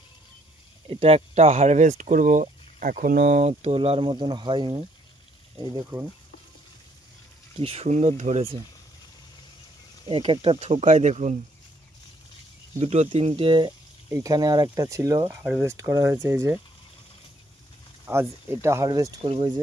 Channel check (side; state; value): both; normal; correlation 0.67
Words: এটা একটা হারভেস্ট করব, এখনো তোলার মতন হয়নি। এই দেখুন কি সুন্দর ধরেছে, এক একটা থোকায় দেখুন দুটো তিনটে। এইখানে আর একটা ছিল, হারভেস্ট করা হয়েছে। এই যে আজ এটা হারভেস্ট করবো। এই